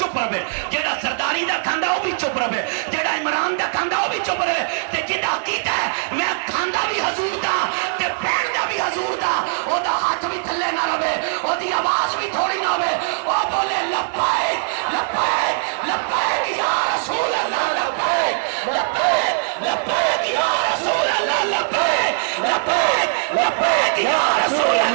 رہے جیڑا سرداری دا کھاندہ وہ بھی چپ رہے جیڑا عمران دا کھاندہ وہ بھی چپ رہے تے جنہ عقیدہ ہے میں کھاندہ بھی حضور دا تے پین دا بھی حضور دا او دا ہاتھ بھی تھلے نہ رہے او دی آواز بھی تھوڑی نہ ہوئے او بولے لبیک لبیک لبیک یا رسول اللہ لبیک لبیک لبیک یا رسول اللہ لبیک لبیک لبیک یا رسول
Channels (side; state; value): left; silent; digital silence